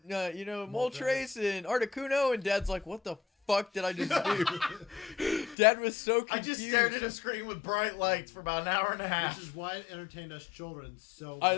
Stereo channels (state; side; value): drops out; right; at 5.6 s